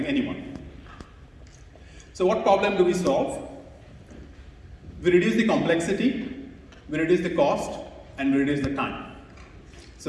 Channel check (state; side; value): identical; both; correlation 1.00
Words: anyone. So what problem do we solve? We reduce the complexity, we reduce the cost, and we reduce the time.